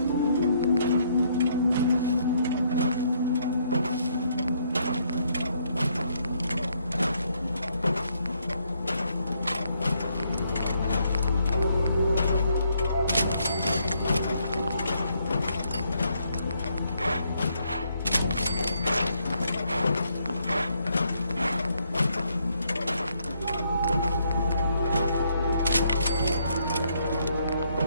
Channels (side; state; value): both; inverted; correlation -0.72